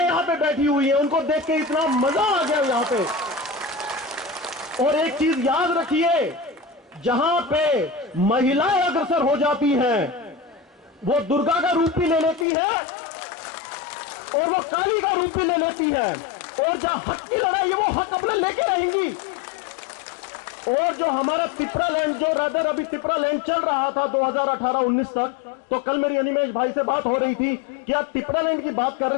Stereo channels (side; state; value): right; drops out; at 12.5 s